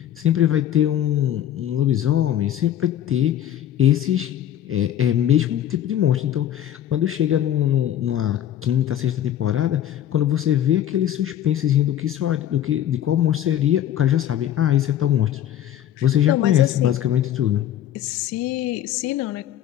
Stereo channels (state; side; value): quieter; right; 11.2 dB